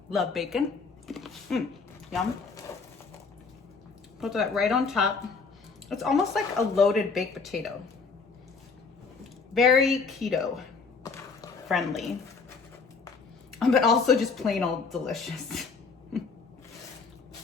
Love bacon. Yum. Put that right on top. It's almost like a loaded baked potato. Very keto friendly, but also just plain old delicious.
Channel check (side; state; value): right; quieter; 4.7 dB